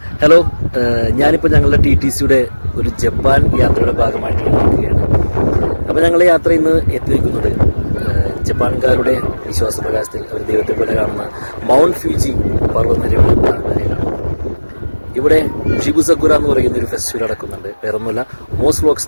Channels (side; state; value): both; inverted; correlation -1.00